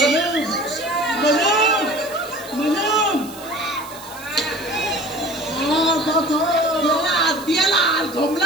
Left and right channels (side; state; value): right; noise; hiss, 17 dB below the sound